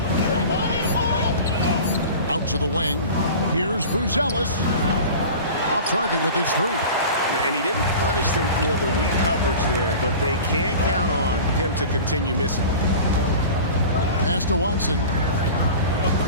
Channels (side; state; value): both; inverted; correlation -0.37